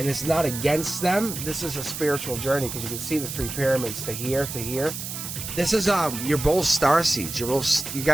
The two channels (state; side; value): noise; right; hiss, 7 dB below the sound